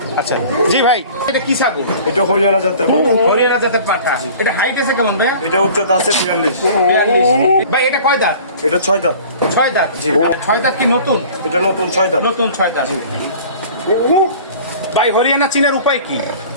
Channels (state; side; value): inverted; both; correlation -0.45